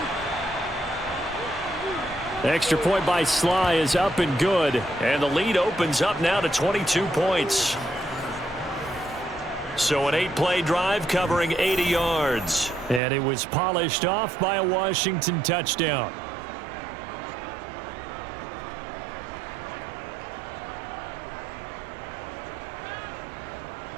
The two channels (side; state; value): left; drops out; at 13.0 s